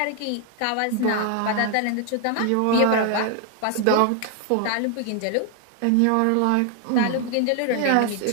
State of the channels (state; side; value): different; both; correlation 0.00